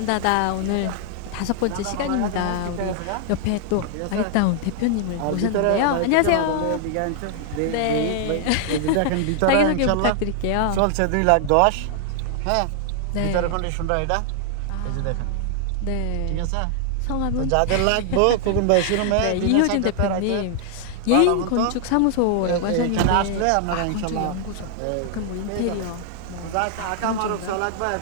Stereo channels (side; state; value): both; different; correlation 0.00